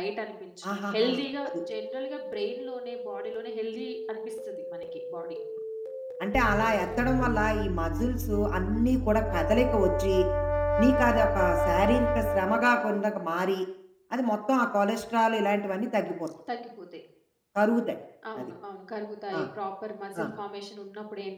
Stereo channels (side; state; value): both; identical; correlation 1.00